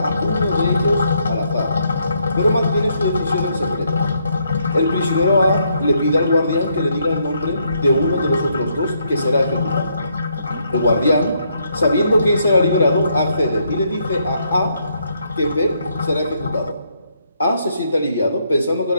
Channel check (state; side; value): inverted; both; correlation -0.74